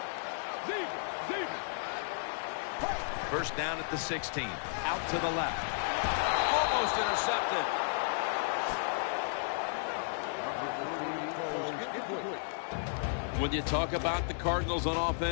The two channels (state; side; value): silent; right; digital silence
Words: First down at the 16. Out to the left. Almost intercepted. When you talk about the Cardinals on